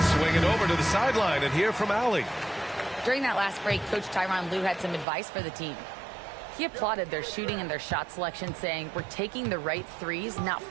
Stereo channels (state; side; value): drops out; left; at 5.1 s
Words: swing it over to the sideline and hear from Allie. During that last break, Coach Tyronn Lue had some advice for the team. He applauded their shooting and their shot selection, saying, "We're taking the right threes, not